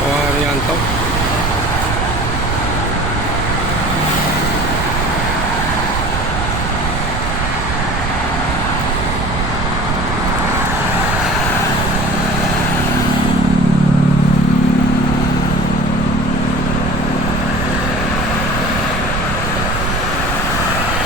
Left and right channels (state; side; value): noise; right; rumble, 3 dB below the sound